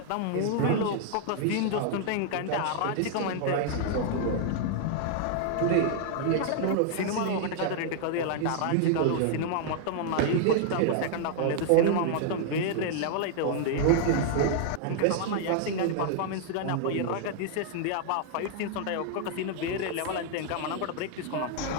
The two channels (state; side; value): different; both; correlation 0.00